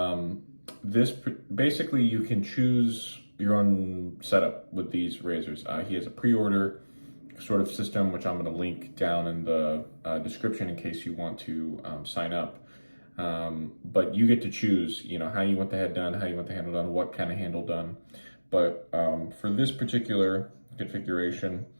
this basically you can choose your own setup with these razors. He has a pre-order sort of system, which I'm going to link down in the description in case you want to sign up. But you get to choose, you know, how you want the head done, how you want the handle done, what kind of handle done. But for this particular configuration,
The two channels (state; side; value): inverted; both; correlation -1.00